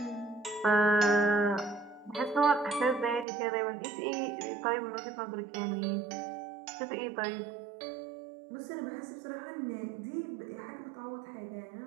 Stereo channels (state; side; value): drops out; left; at 3.2 s